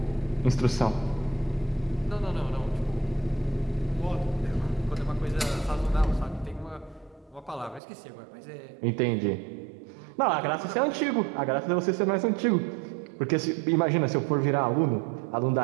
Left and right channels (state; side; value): drops out; left; at 7.8 s